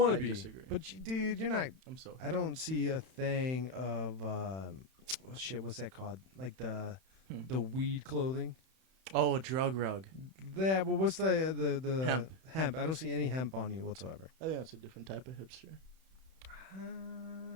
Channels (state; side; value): late; left; 31 ms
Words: I to be, disagree. but dude, you're not. I'm so. I don't see a thing of shit. What's that called? Like the weed clothing. Oh, a drug rug. That. Well, what's the Hemp. hemp? I don't see any hemp on you whatsoever. I think that's a different type of hipster.